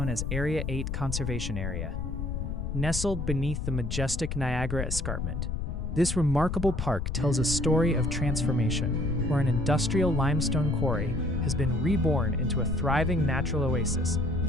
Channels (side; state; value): left; noise; rumble, 3 dB below the sound